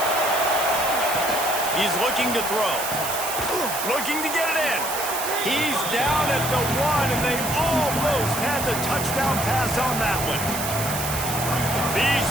He's looking to throw. Looking to get it in. He's down at the 1, and they almost had the touchdown pass on that one. These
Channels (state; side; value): noise; right; hiss, 5 dB below the sound